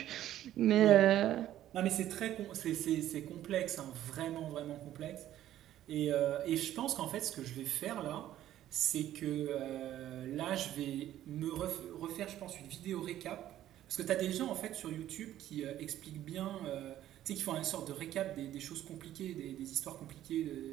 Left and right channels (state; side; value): quieter; left; 12.6 dB